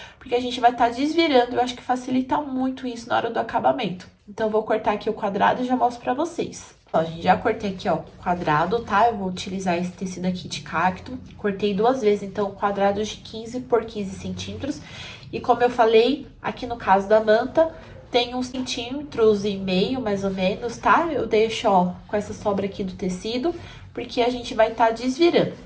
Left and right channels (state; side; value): identical; both; correlation 1.00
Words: porque a gente vai estar desvirando, eu acho que facilita muito isso na hora do acabamento. Então, eu vou cortar aqui o quadrado e já mostro pra vocês. Ó, gente, já cortei aqui, ó, o quadrado, tá? Eu vou utilizar esse tecido aqui de cacto. Cortei 2 vezes, então, quadrados de 15 por 15 centímetros. E como eu falei, aqui no caso da manta, tem 1,5 centímetros, mais ou menos, tá? Eu deixo, ó, com essa sobra aqui do tecido, porque a gente vai estar desvirando.